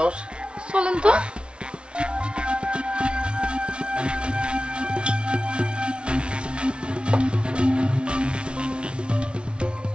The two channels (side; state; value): left; late; 0.058 ms